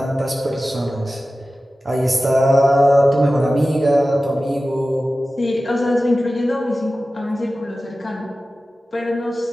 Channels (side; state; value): both; normal; correlation 0.95